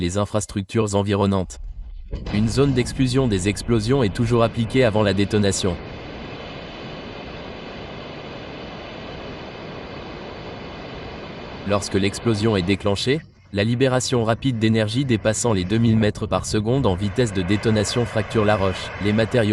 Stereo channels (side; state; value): both; identical; correlation 1.00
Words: infrastructures environnantes. Une zone d'exclusion des explosions est toujours appliquée avant la détonation. Lorsque l'explosion est déclenchée, la libération rapide d'énergie dépassant les 2000 mètres par seconde en vitesse de détonation fracture la roche. Les